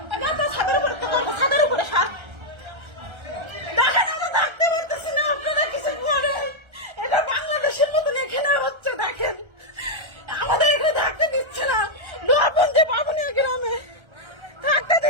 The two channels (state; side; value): late; left; 1.3 ms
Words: ছাদের উপরে সার দেখেন আমরা থাকতে পারতেছি না, আপনারা কিছু করেন, এটা বাংলাদেশের মতন এখানে হচ্ছে, দেখেন আমাদের এখানে থাকতে দিচ্ছে না, লোহাপুঞ্জি বাবুনিয়া গ্রামে থাকতে